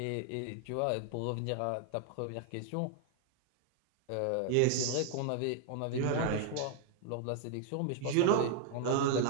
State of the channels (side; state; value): both; different; correlation 0.00